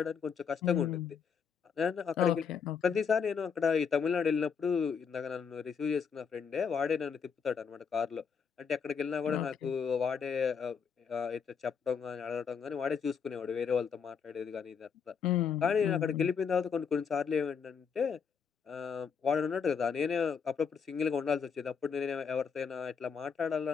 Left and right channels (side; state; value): right; quieter; 6.4 dB